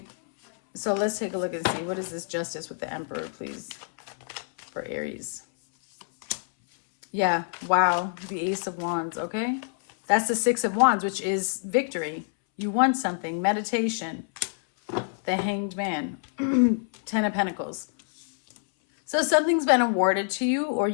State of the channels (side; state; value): right; silent; 60 dB below the other